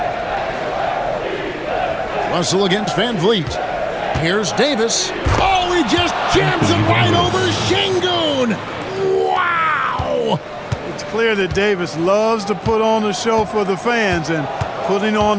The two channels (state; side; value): identical; both; correlation 1.00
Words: Russell against VanVleet. Here's Davis. Oh, he just jams it right over Sengun. Wow! It's clear that Davis loves to put on the show for the fans, and putting on